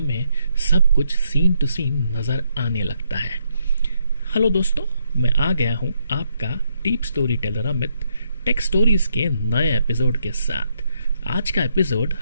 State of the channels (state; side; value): inverted; both; correlation -0.76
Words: सब कुछ सीन टू सीन नजर आने लगता है। हेलो दोस्तों, मैं आ गया हूँ आपका deep story teller Amit, take stories के नए एपिसोड के साथ। आज का एपिसोड